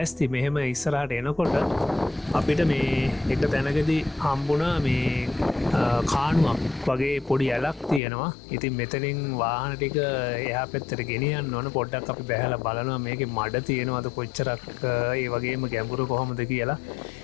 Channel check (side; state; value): right; drops out; at 8.0 s